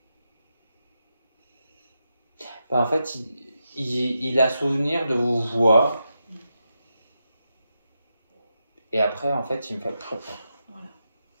Ben, en fait, il a souvenir de vous voir. Et après, en fait, il me fait... Voilà.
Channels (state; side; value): inverted; both; correlation -0.87